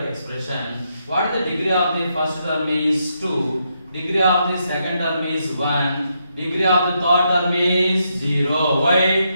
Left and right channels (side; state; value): both; inverted; correlation -0.80